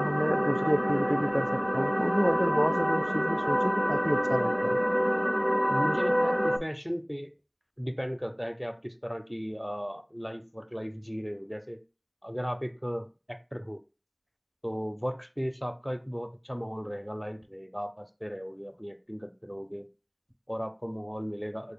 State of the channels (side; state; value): both; identical; correlation 1.00